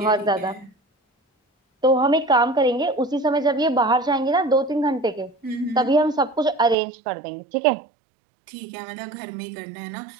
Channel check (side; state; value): left; drops out; at 6.8 s